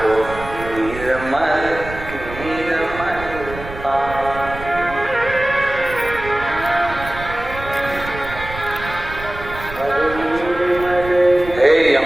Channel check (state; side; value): noise; right; rumble, 12 dB below the sound